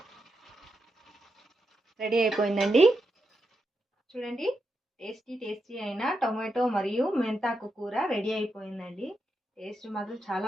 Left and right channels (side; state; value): both; normal; correlation 0.85